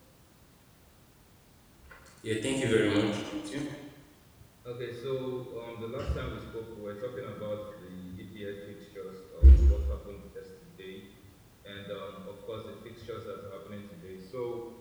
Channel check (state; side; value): identical; both; correlation 1.00